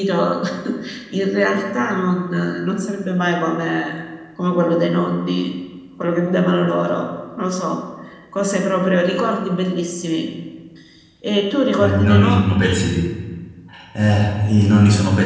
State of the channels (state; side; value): identical; both; correlation 1.00